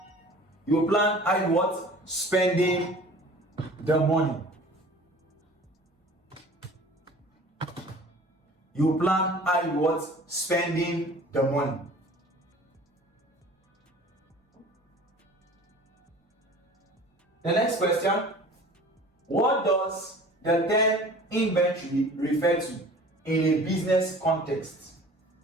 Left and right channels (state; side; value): normal; both; correlation 0.45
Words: You will plan how you what? Spending the money. You plan how you what? Spending the money. The next question. What does the term inventory refer to in a business context?